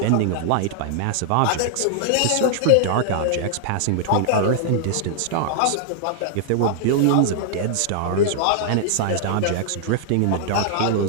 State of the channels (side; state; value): both; different; correlation -0.01